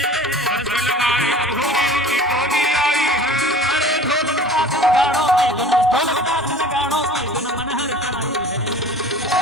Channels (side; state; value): both; normal; correlation 0.44